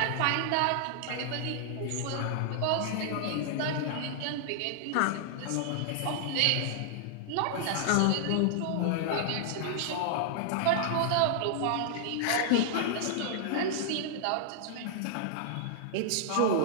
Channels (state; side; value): different; both; correlation -0.01